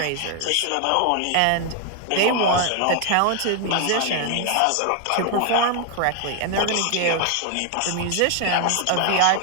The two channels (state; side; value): different; both; correlation 0.01